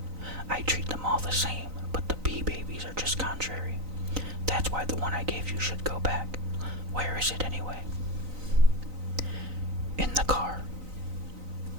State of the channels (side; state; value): left; late; 3.9 ms